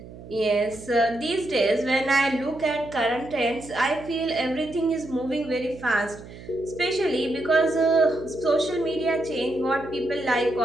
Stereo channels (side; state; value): right; noise; hum, 16 dB below the sound